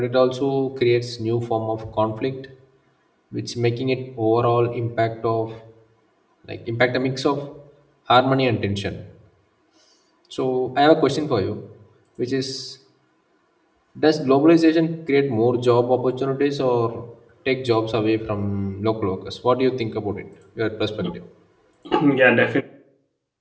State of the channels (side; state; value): both; identical; correlation 1.00